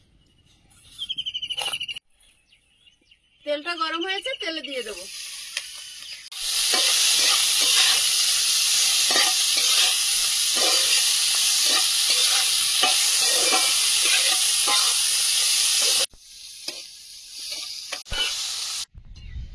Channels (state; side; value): identical; both; correlation 1.00